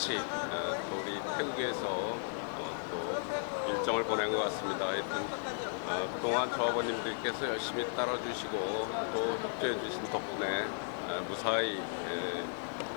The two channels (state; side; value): silent; right; digital silence